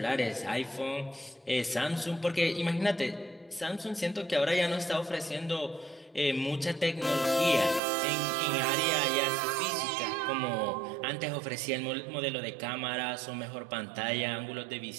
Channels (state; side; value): drops out; left; at 7.8 s